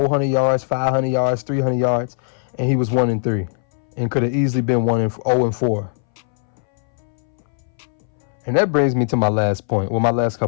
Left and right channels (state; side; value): silent; right; 62 dB below the other